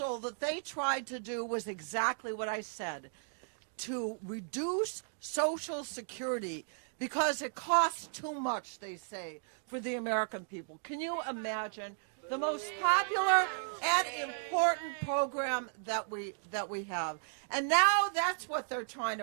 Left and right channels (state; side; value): silent; left; digital silence